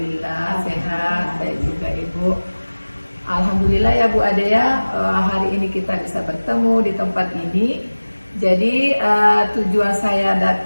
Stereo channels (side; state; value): both; inverted; correlation -1.00